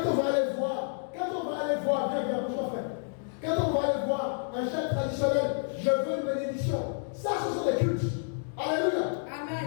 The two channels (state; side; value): silent; right; digital silence